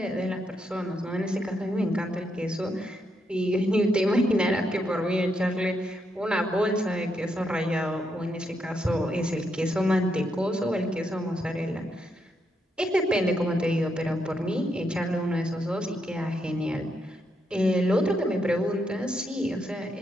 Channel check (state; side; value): normal; both; correlation 0.80